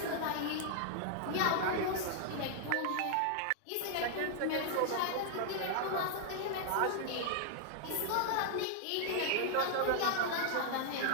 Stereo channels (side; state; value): both; different; correlation 0.00